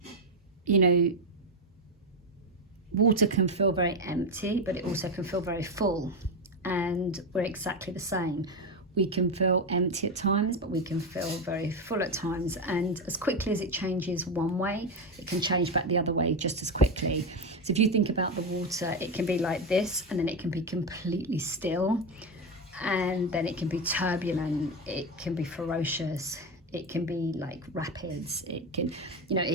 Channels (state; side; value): normal; both; correlation 0.12